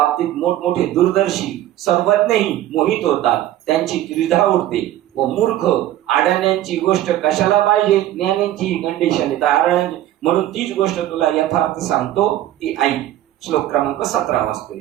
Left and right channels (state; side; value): quieter; left; 13.3 dB